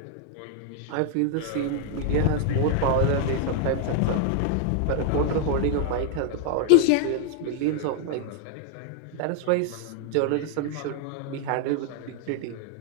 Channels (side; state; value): both; different; correlation 0.00